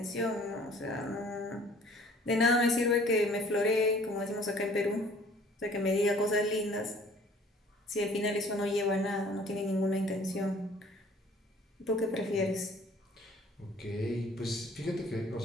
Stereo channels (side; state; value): both; normal; correlation 0.53